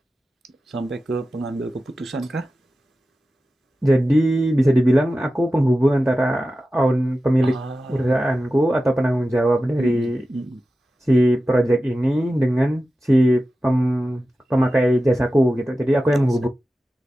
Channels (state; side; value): normal; both; correlation 0.93